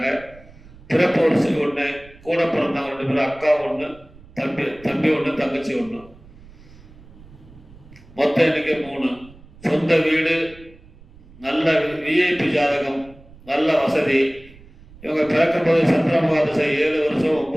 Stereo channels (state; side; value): noise; right; rumble, 23 dB below the sound